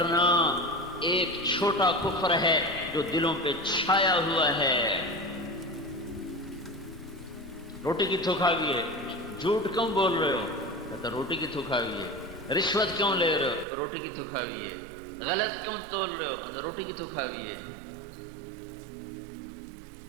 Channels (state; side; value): drops out; left; at 13.7 s